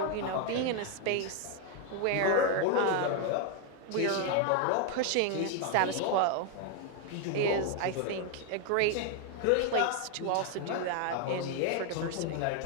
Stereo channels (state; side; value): different; both; correlation 0.01